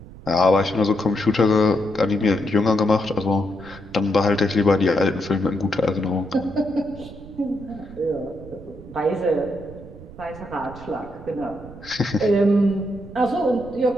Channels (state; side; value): noise; right; rumble, 17 dB below the sound